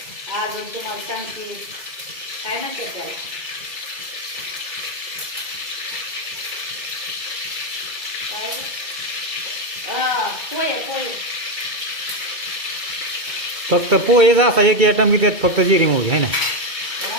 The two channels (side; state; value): left; late; 2.3 ms